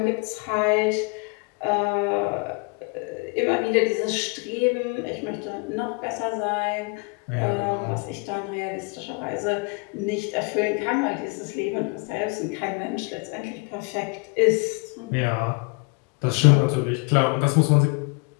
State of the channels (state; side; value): quieter; right; 31.5 dB